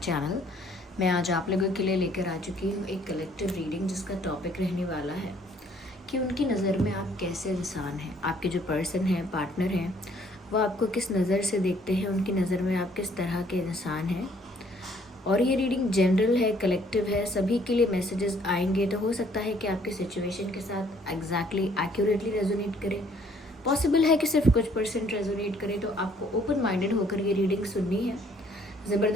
channel. मैं आज आप लोगों के लिए लेकर आ चुकी हूँ एक कलेक्टिव रीडिंग जिसका टॉपिक रहने वाला है कि उनकी नज़र में आप कैसे इंसान हैं। आपके जो पर्सन हैं, पार्टनर हैं, वो आपको किस नज़र से देखते हैं, उनकी नज़र में आप किस तरह के इंसान हैं। और ये रीडिंग जनरल है, कलेक्टिव है, सभी के लिए मैसेजेस आएंगे। तो हो सकता है कि आपके सिचुएशन के साथ एग्जैक्टली एक्यूरेटली रेजोनेट करे। पॉसिबल है कि सिर्फ कुछ परसेंट रेजोनेट करे। तो आपको ओपन माइंडेड होकर ये रीडिंग सुननी है।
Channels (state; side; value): normal; both; correlation 0.62